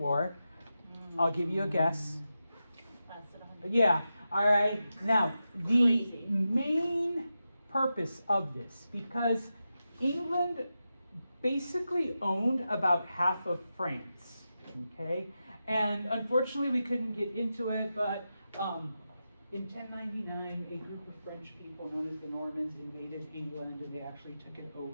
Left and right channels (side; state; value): both; inverted; correlation -0.90